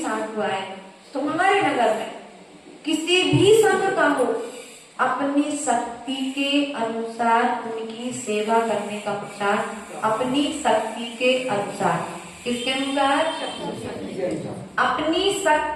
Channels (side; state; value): both; identical; correlation 1.00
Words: आए तुम्हारे नगर में, किसी भी संघ का हो, अपनी शक्ति के अनुसार उनकी सेवा करने का पुरुषार्थ, अपनी शक्ति के अनुसार। किसके अनुसार? अपनी